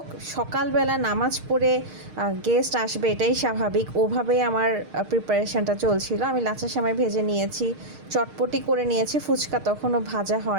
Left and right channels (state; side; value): late; left; 6.5 ms